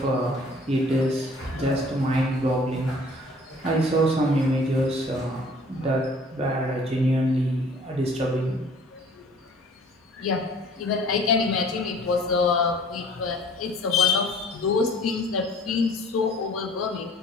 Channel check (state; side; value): normal; both; correlation 0.51